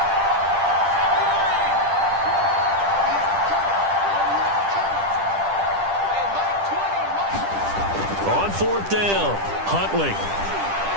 On 4th down, Huntley.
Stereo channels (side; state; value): left; late; 10 ms